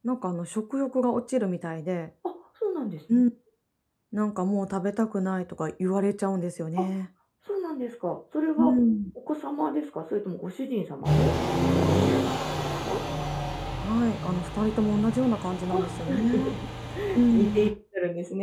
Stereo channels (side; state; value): both; identical; correlation 1.00